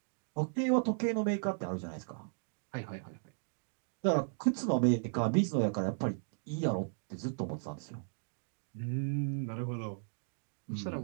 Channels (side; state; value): left; silent; digital silence